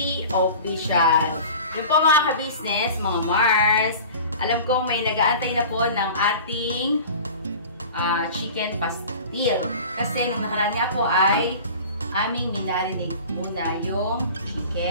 Official. Yun po mga ka-business, mga Mars. Alam kong may nag-aantay na po ng ating chicken pastil. Kasi nung nakaraan nga po ay aming minarinate muna yung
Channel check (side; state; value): both; inverted; correlation -0.40